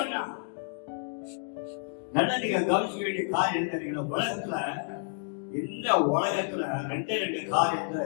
சொன்னான். நல்லா நீங்க கவனிக்க வேண்டிய காரியம் என்ன தெரியுங்களா? உலகத்துல இந்த உலகத்துல 2 காரியம் தான்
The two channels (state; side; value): silent; right; digital silence